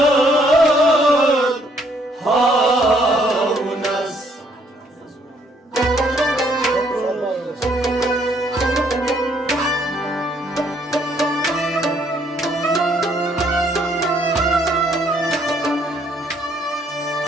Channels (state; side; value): normal; both; correlation 0.67